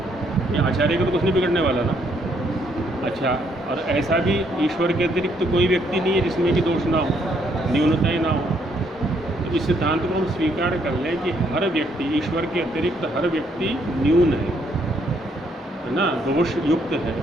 ये आचार्य का तो कुछ नहीं बिगड़ने वाला ना। अच्छा, और ऐसा भी ईश्वर के अतिरिक्त कोई व्यक्ति नहीं है जिसमें कि दोष ना हो, न्यूनता ही ना हो। तो इस सिद्धांत को हम स्वीकार कर लें कि हर व्यक्ति, ईश्वर के अतिरिक्त हर व्यक्ति न्यून है ना, दोष युक्त है।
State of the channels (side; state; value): both; normal; correlation 0.70